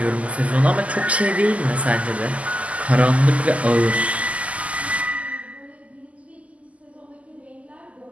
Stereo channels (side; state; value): left; late; 0.067 ms